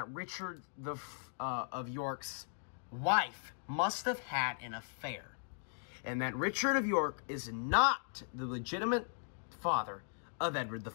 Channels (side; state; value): right; silent; digital silence